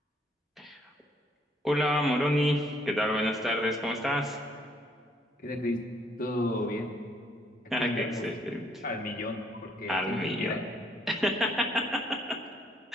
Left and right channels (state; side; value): normal; both; correlation 0.67